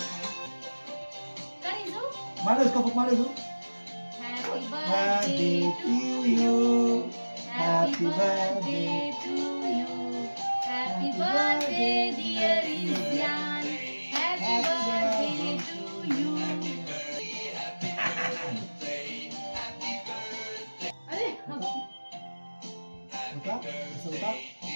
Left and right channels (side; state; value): both; inverted; correlation -1.00